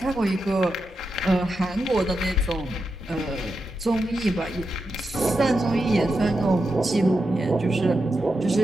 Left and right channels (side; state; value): both; normal; correlation 0.87